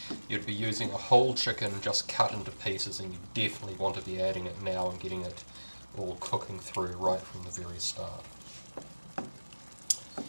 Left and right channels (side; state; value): both; inverted; correlation -1.00